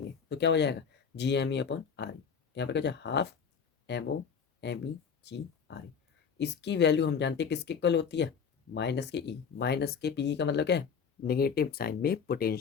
तो क्या हो जाएगा, G M E upon R E. यहाँ पर क्या हो जाए, half M O M E G R E. इसकी वैल्यू हम जानते हैं किसके इक्वल होती है, माइनस के ई। माइनस के पी का मतलब क्या है, नेगेटिव साइन में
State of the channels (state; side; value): quieter; right; 6.5 dB